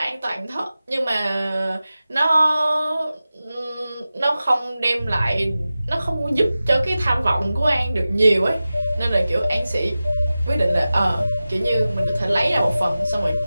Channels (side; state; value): both; inverted; correlation -0.95